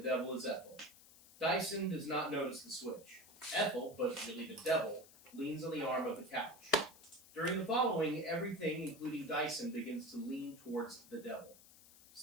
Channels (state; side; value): noise; left; hiss, 22 dB below the sound